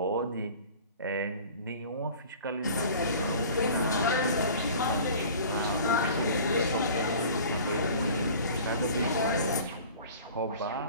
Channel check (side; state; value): both; inverted; correlation -0.44